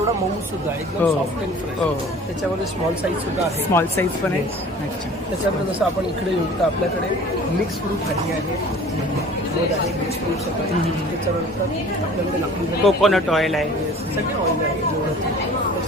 मऊ सुद्धा, एकदम सॉफ्ट अँड फ्रेश. त्याच्यामध्ये स्मॉल साईज सुद्धा आहे. स्मॉल साईज पण आहे. अच्छा. त्याच्यामध्ये जसं आपण इकडे येऊ तर आपल्याकडे मिक्स फ्रूट भाजी आहे, मध आहे, मिक्स फ्रूट्स आहे. त्याच्यानंतर आपल्याकडे लाकडी कोकोनट ऑइल आहे, सगळे ऑइल आहे जेवढं.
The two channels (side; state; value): both; normal; correlation 0.46